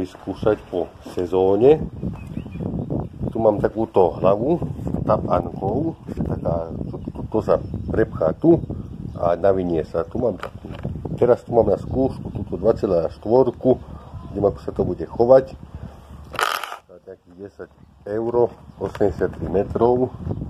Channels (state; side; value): identical; both; correlation 1.00